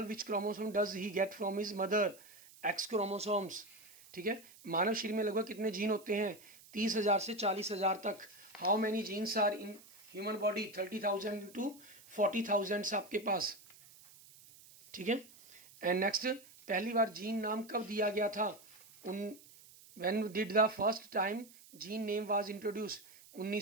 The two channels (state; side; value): noise; right; hiss, 22 dB below the sound